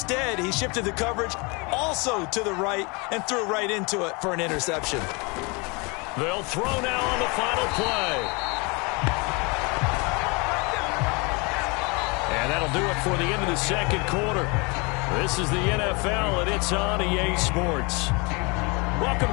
he shifted the coverage also to the right and threw right into it for an interception. They'll throw now on the final play. And that'll do it for the end of the second quarter. This is the NFL, and it's on EA Sports. Welcome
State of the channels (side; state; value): right; quieter; 29.2 dB